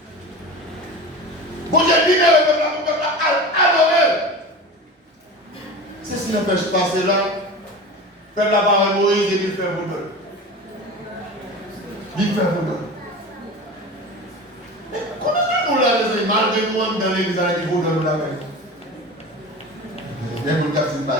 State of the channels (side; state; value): both; normal; correlation 0.32